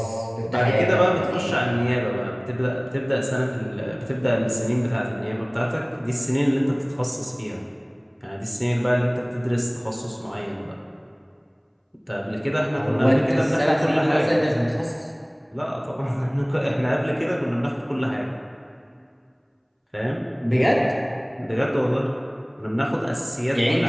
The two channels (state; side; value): identical; both; correlation 1.00